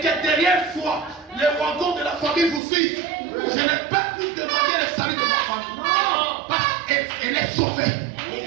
derrière soi, les wagons de la famille vous suivent. Je n'ai pas pu demander le salut de ma famille. Parce qu'elle est sauvée.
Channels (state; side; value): drops out; left; at 2.6 s